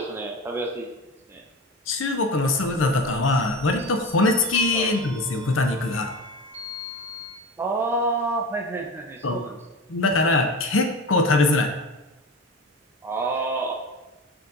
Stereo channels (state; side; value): normal; both; correlation 0.29